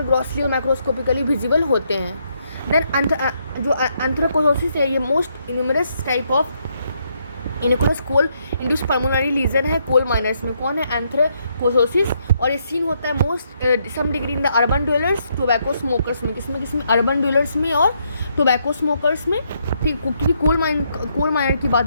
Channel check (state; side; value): inverted; both; correlation -0.75